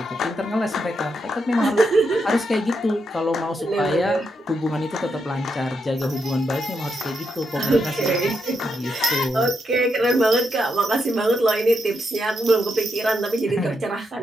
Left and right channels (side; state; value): both; normal; correlation 0.82